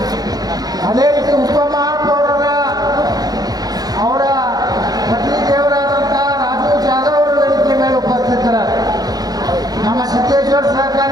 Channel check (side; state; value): left; late; 0.19 ms